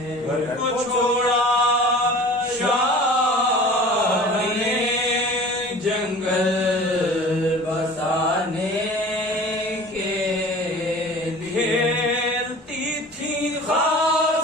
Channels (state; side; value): normal; both; correlation 0.42